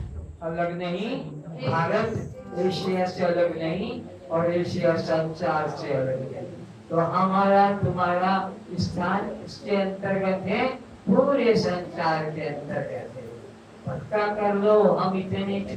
अलग नहीं, भारत एशिया से अलग नहीं, और एशिया संसार से अलग है। तो हमारा तुम्हारा स्थान इसके अंतर्गत है, पूरे संसार के अंतर्गत है। पक्का कर लो, हम इतने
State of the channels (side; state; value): both; identical; correlation 1.00